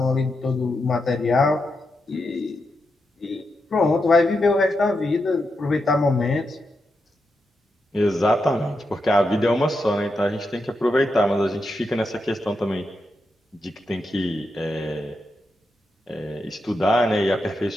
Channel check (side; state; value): both; normal; correlation 0.85